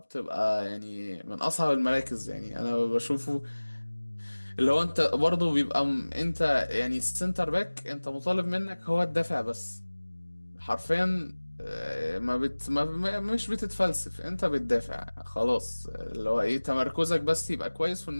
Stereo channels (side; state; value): both; inverted; correlation -1.00